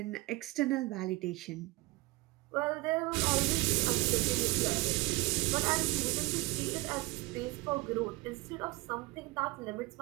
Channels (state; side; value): quieter; left; 22.5 dB